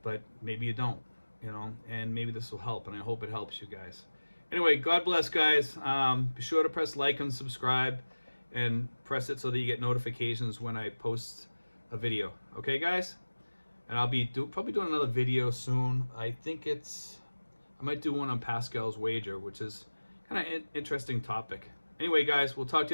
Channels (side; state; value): both; inverted; correlation -1.00